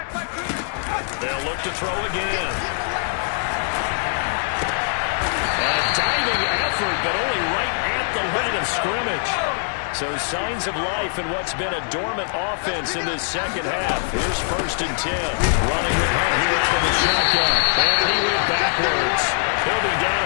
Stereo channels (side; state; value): right; silent; digital silence